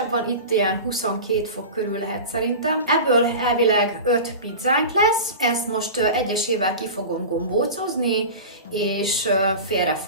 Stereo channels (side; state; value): both; inverted; correlation -0.30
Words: van, itt ilyen 22 fok körül lehet szerintem. Ebből elvileg 5 pizzánk lesz, ezt most egyesével ki fogom gombócozni, és félre